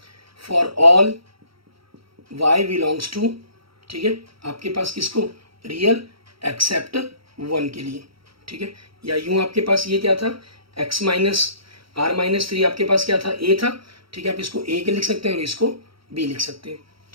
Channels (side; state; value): left; late; 0.75 ms